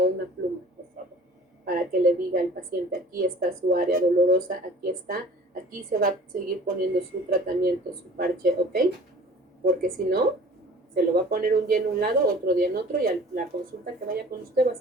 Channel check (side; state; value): both; normal; correlation 0.47